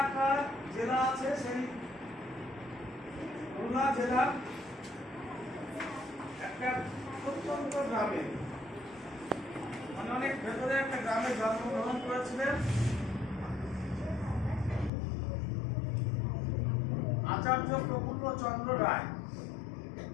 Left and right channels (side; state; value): right; drops out; at 14.9 s